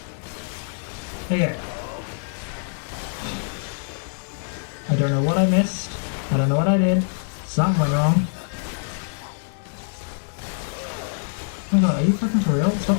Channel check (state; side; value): silent; right; digital silence